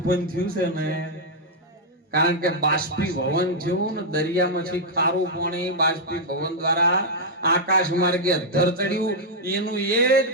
થયું છે ને, કારણ કે બાષ્પીભવન થયું ને દરિયામાંથી ખારું પાણી બાષ્પીભવન દ્વારા આકાશ માર્ગે અધ્ધર ચડ્યું. એનું એ જ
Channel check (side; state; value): both; normal; correlation -0.04